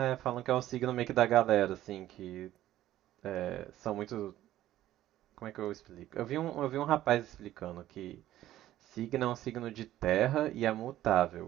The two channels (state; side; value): quieter; left; 13.7 dB